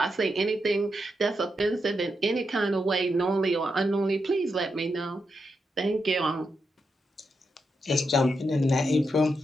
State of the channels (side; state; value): both; normal; correlation 0.85